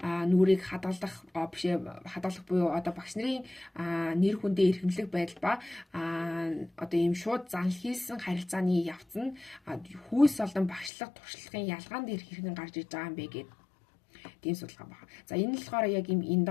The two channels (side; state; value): right; drops out; at 10.9 s